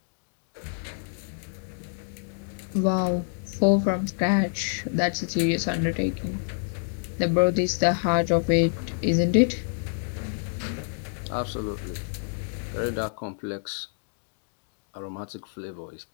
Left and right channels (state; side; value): silent; right; digital silence